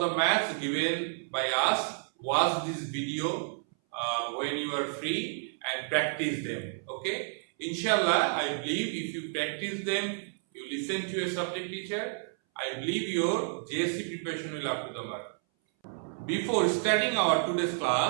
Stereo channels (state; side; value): silent; left; 57 dB below the other